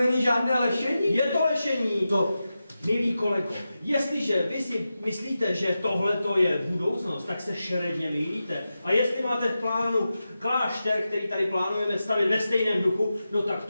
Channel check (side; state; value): both; inverted; correlation -0.92